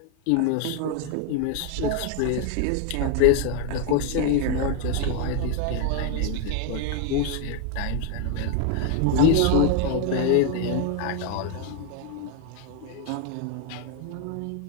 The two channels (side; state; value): both; different; correlation 0.01